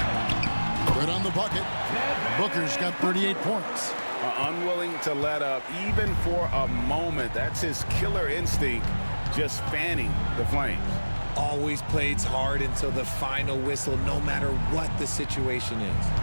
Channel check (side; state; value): both; inverted; correlation -1.00